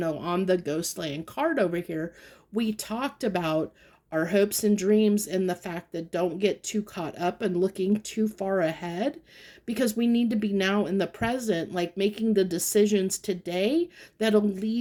on the Ghostland card over here. We talked about our hopes and dreams and the fact that don't get too caught up and looking too far ahead, because we need to be now in the present, like making the decisions today that'll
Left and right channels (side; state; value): both; identical; correlation 1.00